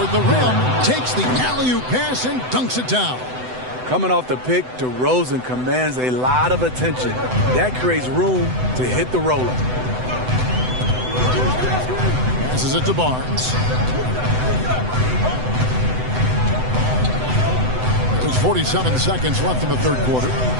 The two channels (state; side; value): late; left; 7.9 ms